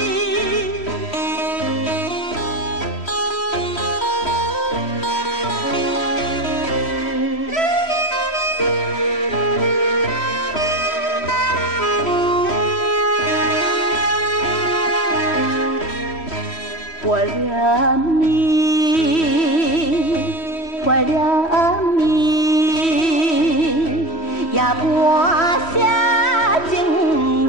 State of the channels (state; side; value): late; right; 3.1 ms